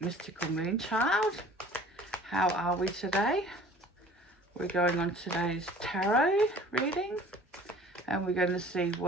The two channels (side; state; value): both; normal; correlation 0.48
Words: Mystical Moonchild. How are we today? We're going on today's tarot reading and we're going to see